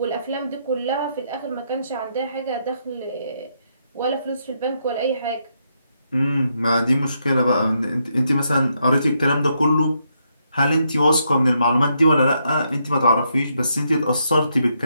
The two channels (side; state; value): both; inverted; correlation -0.78